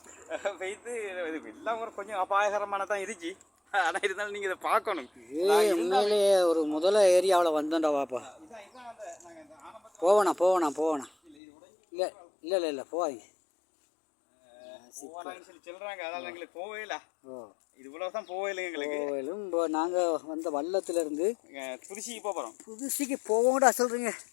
போயிட்டு இது எல்லாம் ஒரு கொஞ்சம் அபாயகரமான தான் இருந்துச்சு. ஆனால் இருந்தாலும் நீங்கள் இதை பார்க்கணும். உண்மையிலேயே ஒரு முதல்ல ஏரியாவில் வந்தோண்டா வாப்பா. போவேண்ணா இல்லை போவாங்க சொல்லி சொல்கிறாங்க. அதனால் எங்களுக்கு போவே இல்லை. இது இவ்வளோதான் போவே இல்லை எங்களுக்கு. போவேலும் இப்போ நாங்கள் வந்த வல்லத்துலேருந்து புதுசிக்கு போகிறோம். புதுசிக்கு போவோங்கடா சொல்கிறீங்க.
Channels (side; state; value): right; drops out; at 11.4 s